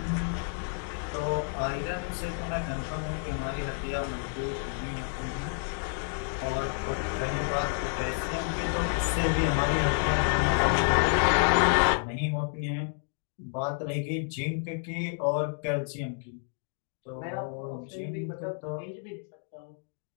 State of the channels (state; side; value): silent; right; 58 dB below the other